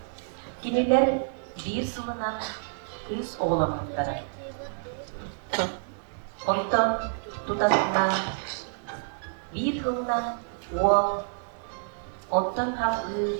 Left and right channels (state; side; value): silent; left; digital silence